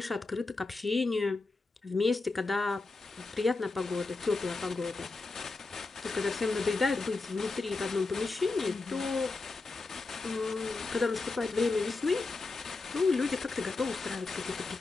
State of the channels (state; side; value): quieter; right; 3.6 dB